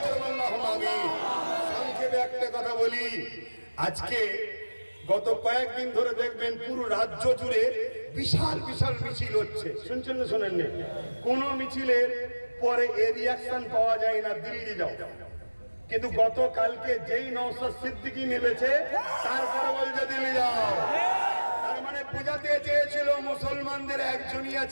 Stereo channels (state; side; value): inverted; both; correlation -1.00